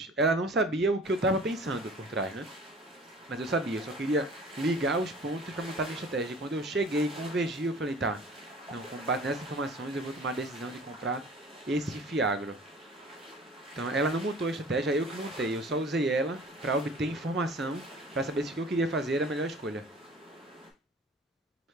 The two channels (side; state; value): both; normal; correlation 0.46